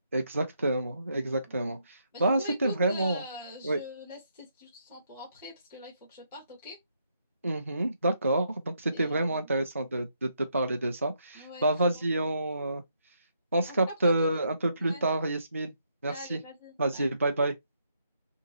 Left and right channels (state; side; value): inverted; both; correlation -0.76